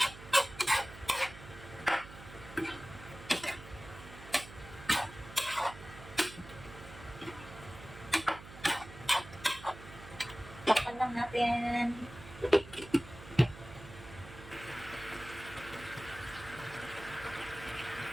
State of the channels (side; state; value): right; noise; hum, 15 dB below the sound